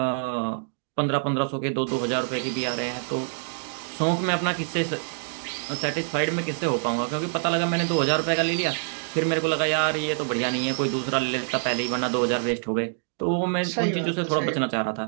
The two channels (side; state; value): left; silent; digital silence